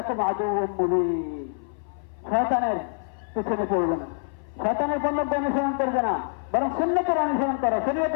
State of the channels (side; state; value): right; silent; 58 dB below the other